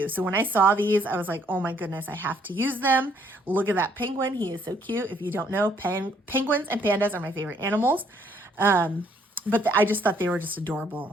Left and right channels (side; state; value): both; normal; correlation 0.66